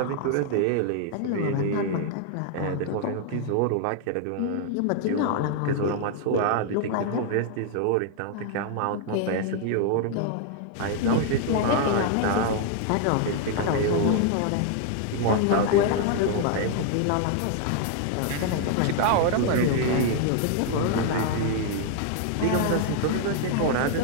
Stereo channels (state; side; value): different; both; correlation 0.00